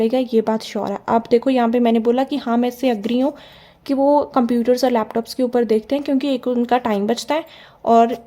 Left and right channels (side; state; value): both; identical; correlation 1.00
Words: ये बात श्योर है. आप देखो यहाँ पे मैंने बोला कि हाँ मैं इससे अग्री हूँ कि वो कंप्यूटर्स और लैपटॉप्स के ऊपर देखते हैं, क्योंकि एक उनका टाइम बचता है और